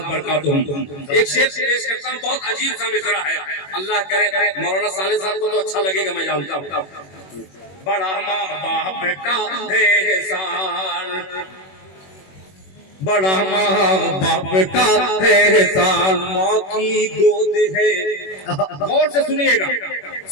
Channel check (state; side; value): late; right; 21 ms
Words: बरकातुहुम। एक शेर पेश करता हूँ, बहुत अजीब सा मिसरा है, अल्लाह करे मौलाना साले साहब को तो अच्छा लगेगा, मैं जानता हूँ। बड़ा माँ बाप का है एहसान, बड़ा माँ बाप का है एहसान, माँ की गोद है। गौर से सुनिएगा,